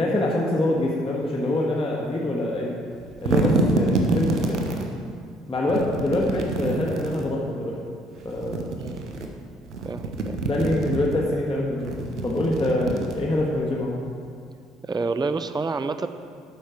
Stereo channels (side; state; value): both; normal; correlation 0.66